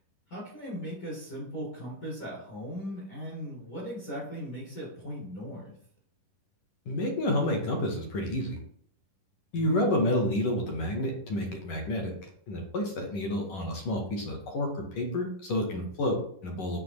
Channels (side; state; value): right; late; 11 ms